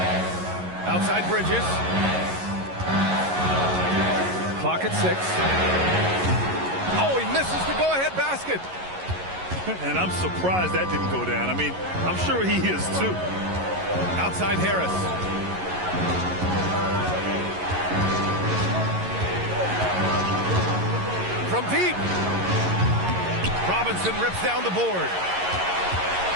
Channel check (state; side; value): late; left; 11 ms